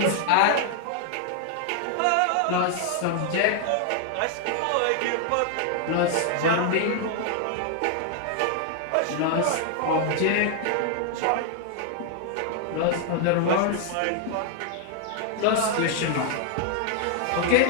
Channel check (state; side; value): different; both; correlation 0.00